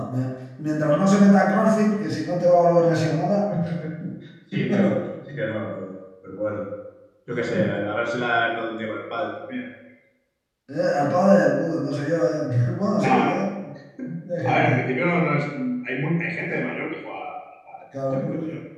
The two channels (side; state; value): both; identical; correlation 1.00